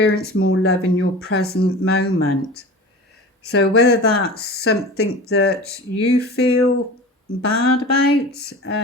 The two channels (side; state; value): both; normal; correlation 0.35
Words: more love in your present moment. So whether that's something that you feel bad about,